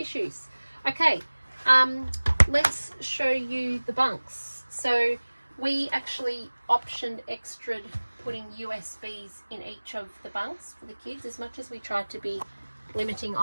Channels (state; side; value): inverted; both; correlation -1.00